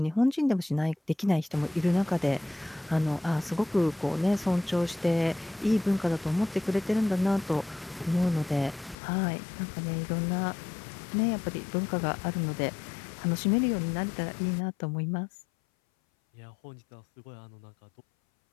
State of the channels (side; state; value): right; drops out; at 9.0 s